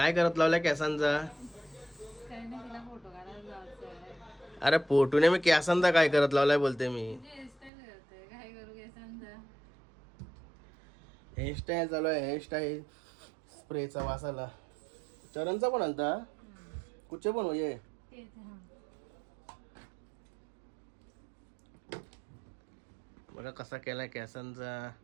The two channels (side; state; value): left; drops out; at 7.7 s